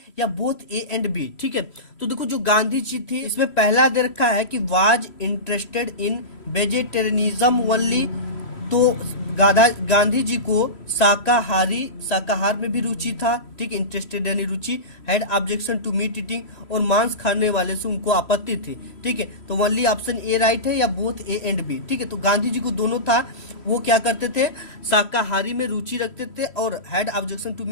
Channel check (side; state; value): right; late; 3.0 ms